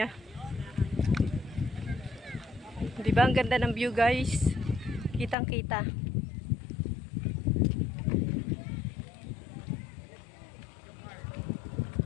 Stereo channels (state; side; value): drops out; right; at 5.4 s